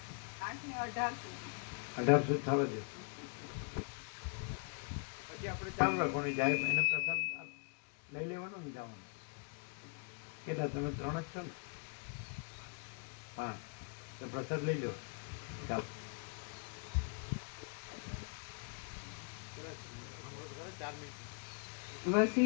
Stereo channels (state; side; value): quieter; right; 36.5 dB